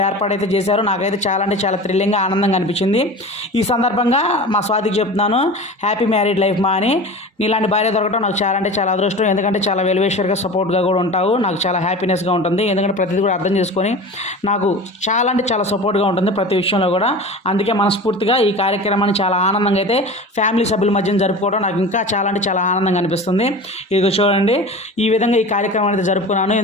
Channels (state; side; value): normal; both; correlation 0.34